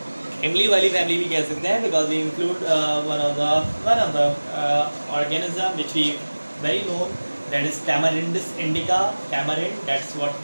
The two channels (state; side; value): inverted; both; correlation -1.00